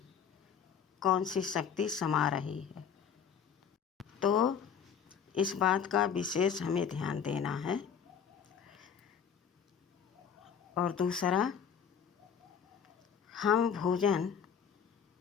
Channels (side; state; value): right; quieter; 7.3 dB